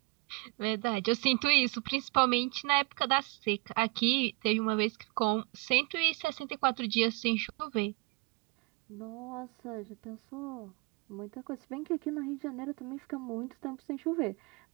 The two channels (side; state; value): left; quieter; 25.9 dB